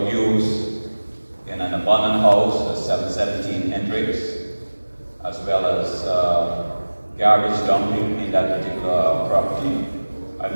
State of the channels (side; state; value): both; inverted; correlation -1.00